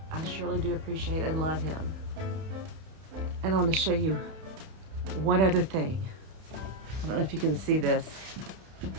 I surely do appreciate and love him. And I want to show you one other thing. I don't know if you can see this.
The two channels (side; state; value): left; late; 31 ms